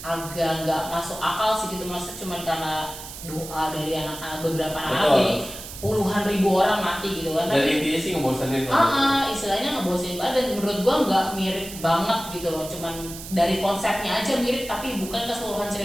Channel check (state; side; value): noise; right; hiss, 12 dB below the sound